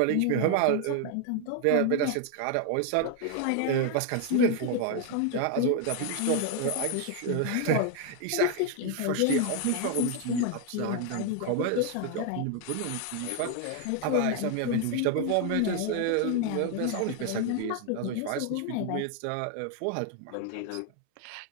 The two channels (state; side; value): different; both; correlation 0.01